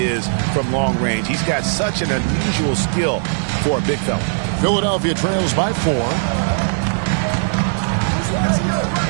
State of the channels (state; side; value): silent; left; digital silence